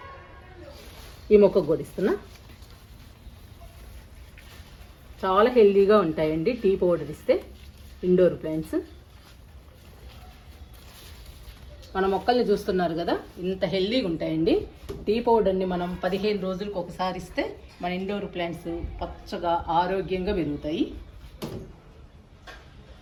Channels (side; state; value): both; identical; correlation 1.00